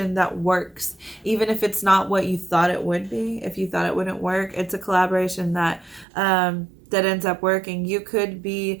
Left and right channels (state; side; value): drops out; left; at 6.1 s